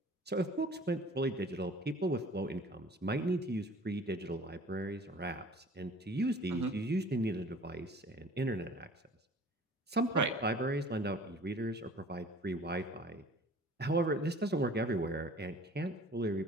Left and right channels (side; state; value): both; normal; correlation 0.48